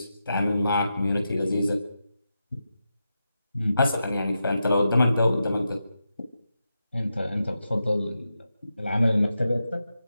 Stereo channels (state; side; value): inverted; both; correlation -0.88